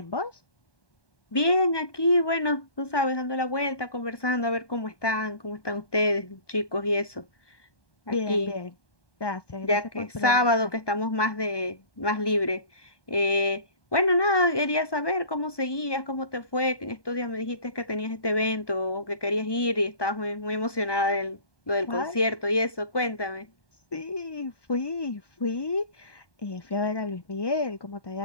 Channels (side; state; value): right; late; 1.2 ms